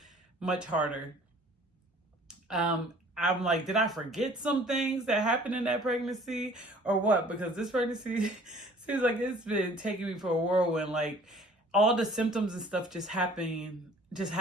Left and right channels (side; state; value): both; normal; correlation 0.52